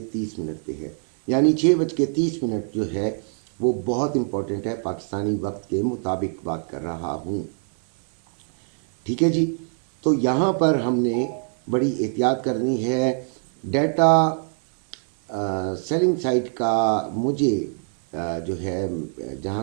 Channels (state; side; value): silent; left; digital silence